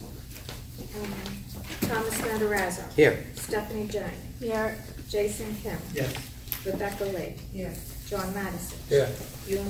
Matarazzo. Here. Stephanie Jane. Here. Jason Kim. Yes. Rebecca Lee. Here. John Madison. Here.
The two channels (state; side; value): identical; both; correlation 1.00